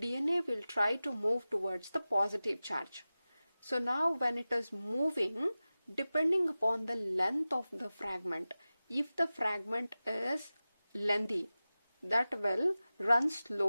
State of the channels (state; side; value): inverted; both; correlation -0.96